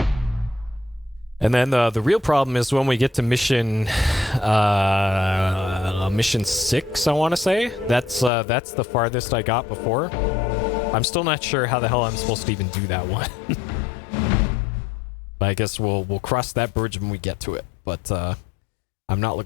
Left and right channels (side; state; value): right; drops out; at 8.3 s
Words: And then the real problem is when we get to mission 6, I want to say. That's the farthest I got before. I'm still not sure how the hell I'm supposed to even do that one. But I guess we'll cross that bridge when we get to it. But I'm not